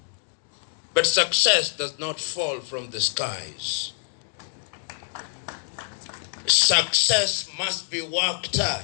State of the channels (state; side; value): silent; right; digital silence